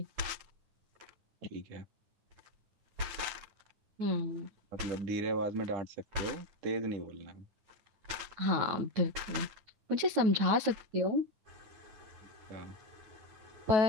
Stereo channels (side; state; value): left; late; 9.1 ms